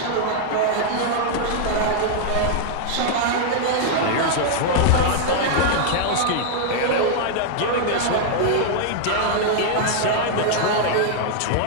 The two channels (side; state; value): both; different; correlation -0.01